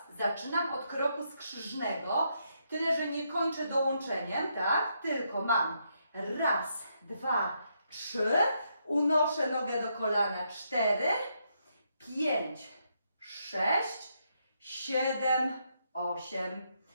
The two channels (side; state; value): both; inverted; correlation -0.78